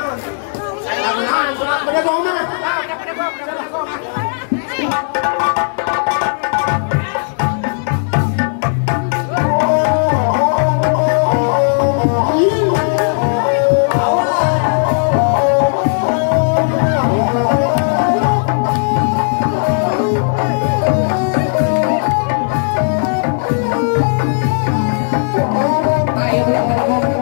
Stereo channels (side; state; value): right; silent; digital silence